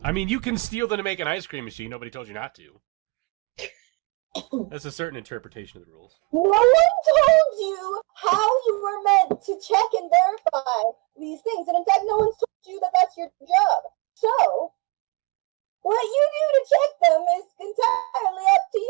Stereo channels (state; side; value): quieter; left; 27.7 dB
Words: I mean, you can steal them to make an ice cream machine. Nobody told you not to. That's a certain interpretation of the rules. No one told you how you were meant to check and verify these things. And in fact, no one's told you that that's your job. So, what you do to check them is entirely up to